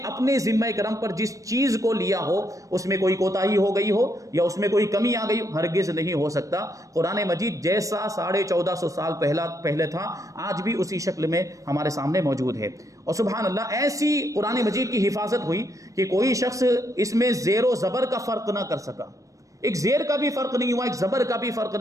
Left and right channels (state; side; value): late; left; 0.16 ms